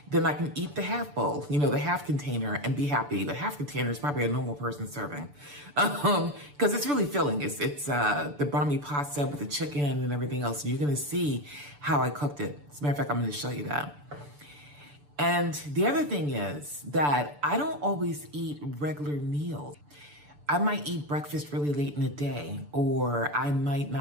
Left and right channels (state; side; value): late; left; 6.9 ms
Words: then I can eat the half bowl, you know, the half container, and be happy. The half container is probably a normal person serving, because it's really filling. It's the bumpy pasta with the chicken and everything else. And you're gonna see how I cooked it. As a matter of fact, I'm gonna show you that. And the other thing is that I don't always eat regular meals. I might eat breakfast really late in the day, or I might